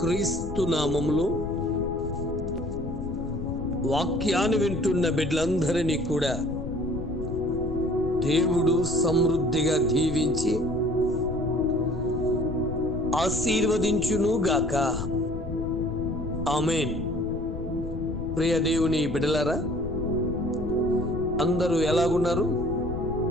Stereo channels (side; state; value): left; noise; rumble, 7 dB below the sound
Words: నామములో వాక్యాన్ని వింటున్న బిడ్డలందరినీ కూడా దేవుడు సమృద్ధిగా దీవించి ఆశీర్వదించును గాక. ఆమేన్. ప్రియ దేవుని బిడ్డలారా, అందరూ ఎలాగున్నారు?